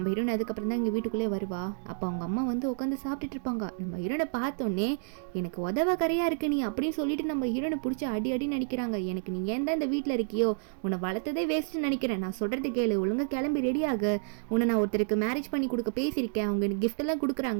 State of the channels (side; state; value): left; silent; digital silence